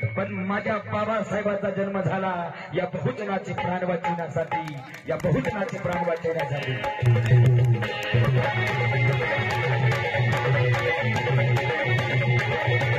पण माझ्या बाबासाहेबांचा जन्म झाला या बहुजनाचे प्राण वाचवण्यासाठी, या बहुजनाचे प्राण वाचवण्यासाठी.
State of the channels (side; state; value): both; identical; correlation 1.00